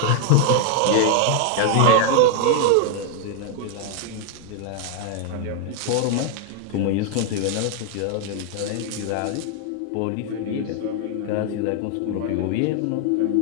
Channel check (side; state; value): both; different; correlation 0.00